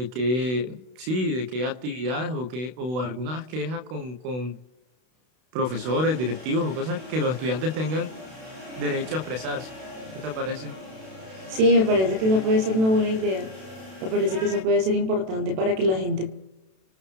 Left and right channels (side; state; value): left; late; 32 ms